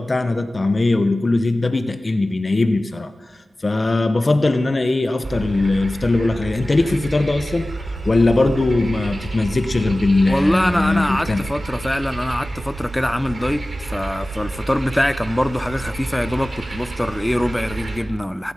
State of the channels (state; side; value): normal; both; correlation 0.97